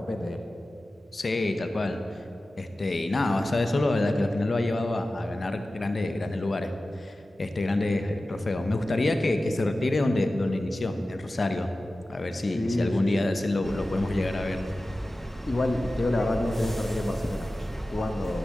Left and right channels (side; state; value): both; normal; correlation 0.95